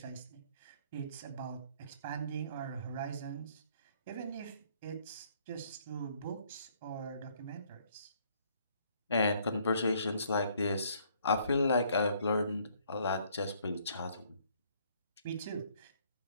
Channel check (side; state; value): both; inverted; correlation -0.64